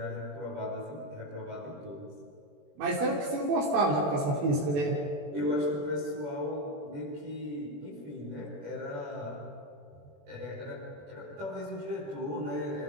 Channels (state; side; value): late; left; 21 ms